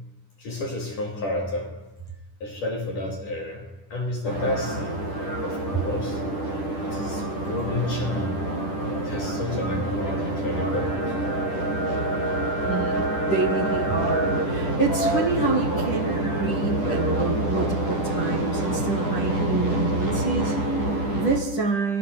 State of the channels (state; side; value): late; right; 10 ms